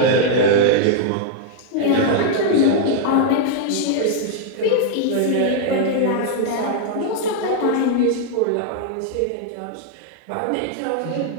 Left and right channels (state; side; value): different; both; correlation -0.01